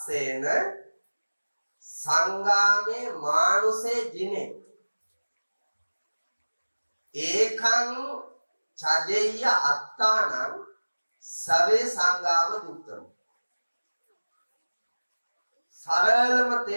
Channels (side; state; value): both; inverted; correlation -1.00